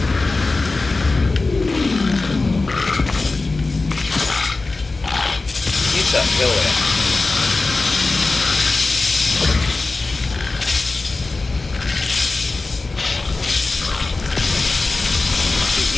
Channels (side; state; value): right; quieter; 3.5 dB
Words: You suck, go away. You